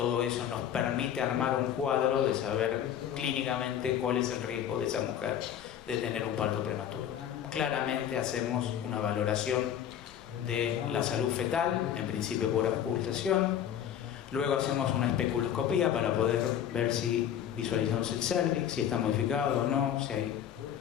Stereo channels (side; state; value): right; quieter; 9.8 dB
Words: eso nos permite armar un cuadro de saber clínicamente cuál es el riesgo de esa mujer de tener un parto prematuro. Claramente hacemos una valoración de la salud fetal, en principio por auscultación. Luego hacemos una especuloscopía para poder ver si visualizamos el cérvix, si está modificado o no, si hay